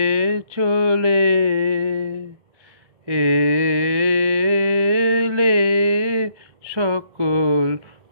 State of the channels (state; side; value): late; left; 1.3 ms